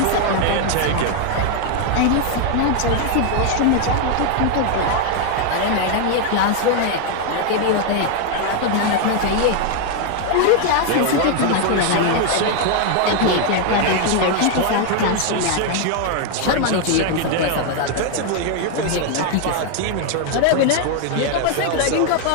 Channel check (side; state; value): both; different; correlation 0.01